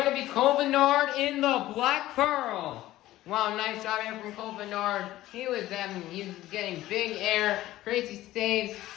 to be Cole Bernard in the Black Pearl. Wow, nice job here from Cole Bernard. He was getting big air, crazy saves,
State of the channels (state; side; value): quieter; right; 15.5 dB